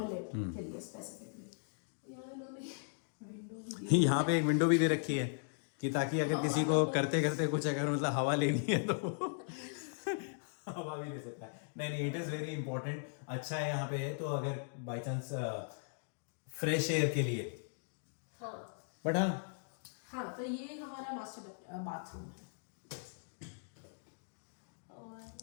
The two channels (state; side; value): silent; right; digital silence